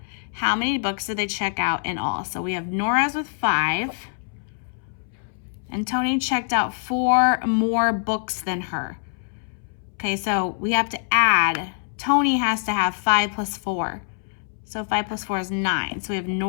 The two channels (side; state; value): right; silent; 62 dB below the other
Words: How many books did they check out in all? So we have Nora's with 5. And Tony checked out 4 more books than her. Okay, so we have to add. Tony has to have 5 plus 4. So 5 plus 4 is 9. So we have